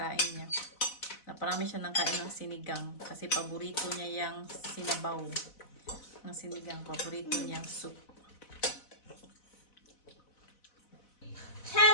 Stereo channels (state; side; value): late; right; 4.0 ms